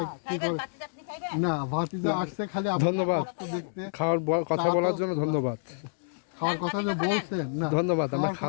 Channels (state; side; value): silent; right; digital silence